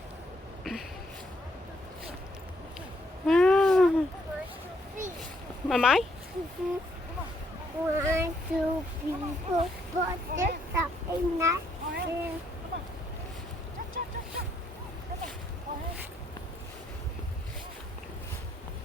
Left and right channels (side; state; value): both; normal; correlation 0.71